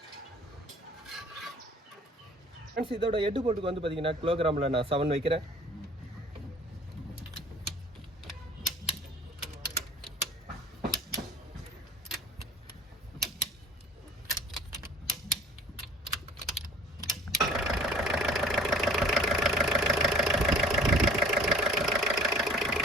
ஃப்ரெண்ட்ஸ் இதோட ஹெட் போல்ட்டுக்கு வந்து பார்த்தீங்கன்னா கிலோகிராமில் நான் 7 வைக்கிறேன்.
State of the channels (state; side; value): normal; both; correlation 0.48